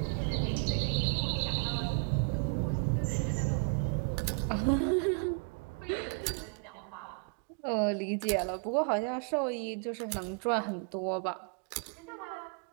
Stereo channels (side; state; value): left; quieter; 38.0 dB